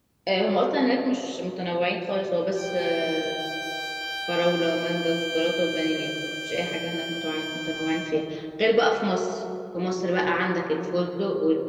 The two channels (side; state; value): both; identical; correlation 1.00